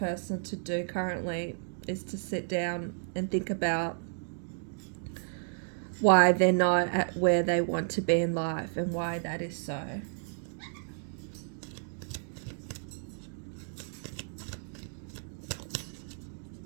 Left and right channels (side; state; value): left; silent; digital silence